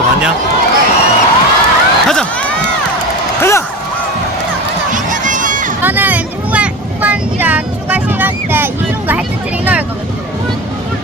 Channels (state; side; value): normal; both; correlation 0.27